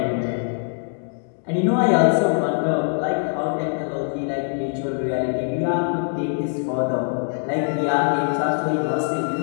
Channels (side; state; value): right; silent; digital silence